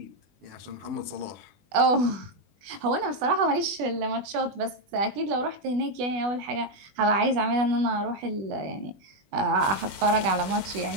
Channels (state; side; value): late; left; 20 ms